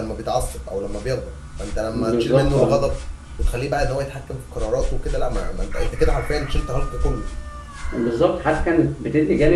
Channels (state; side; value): identical; both; correlation 1.00